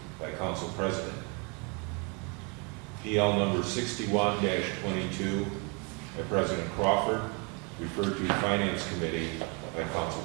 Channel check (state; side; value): quieter; left; 33.0 dB